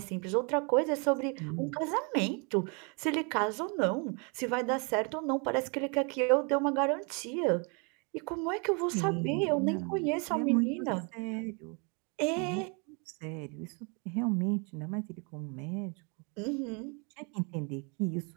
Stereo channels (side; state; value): left; quieter; 34.4 dB